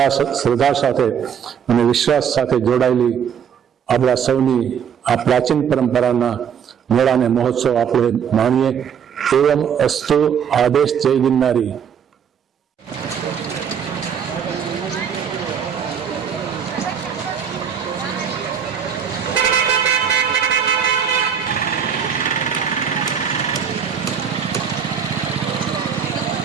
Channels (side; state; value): left; quieter; 7.8 dB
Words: શ્રદ્ધા સાથે અને વિશ્વાસ સાથે જોડાયેલી આપણા સૌની આ પ્રાચીન પરંપરાના મેળાને મહોત્સવ આપણે માણીએ. એવમ અસ્તુ. આદેશ. જય ગિરનારી.